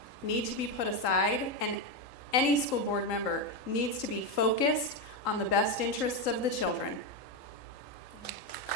need to be put aside, and any school board member needs to be focused on the best interests of the children.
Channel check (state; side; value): late; right; 3.8 ms